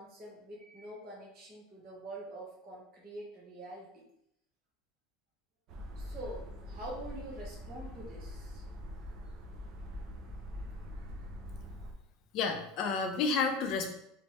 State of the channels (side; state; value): right; quieter; 3.1 dB